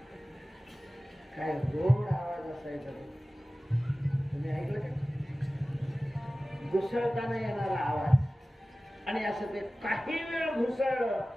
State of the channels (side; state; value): both; normal; correlation 0.97